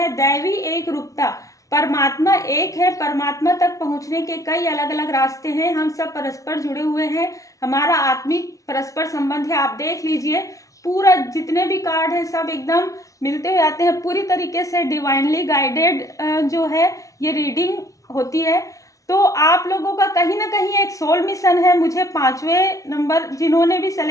दैवी एक रूपता, परमात्मा एक है। परमात्मा तक पहुंचने के कई अलग अलग रास्ते हैं। हम सब परस्पर जुड़े हुए हैं, हमारा आत्मिक परस्पर संबंध है। आप देख लीजिए, पूरा जितने भी कार्ड हैं सब एकदम मिलते हुए आते हैं। पूरी तरीके से डिवाइनली गाइडेड जो है ये रीडिंग होती है। तो आप लोगों का कहीं ना कहीं एक सोल मिशन है। मुझे 5वें नंबर जिन्होंने भी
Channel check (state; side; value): late; right; 0.16 ms